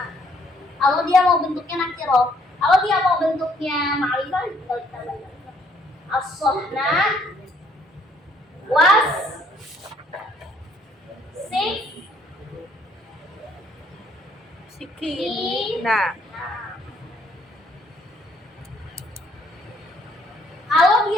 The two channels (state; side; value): normal; both; correlation 0.66